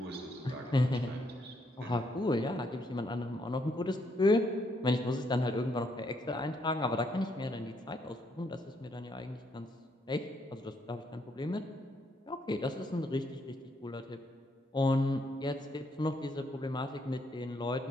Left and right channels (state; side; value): normal; both; correlation 0.73